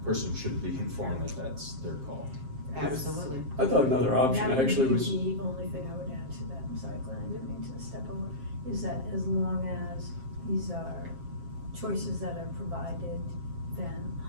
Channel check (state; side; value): late; left; 7.5 ms